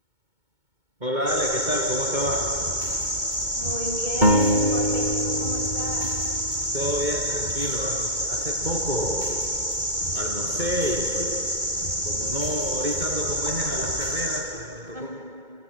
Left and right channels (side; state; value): left; late; 2.2 ms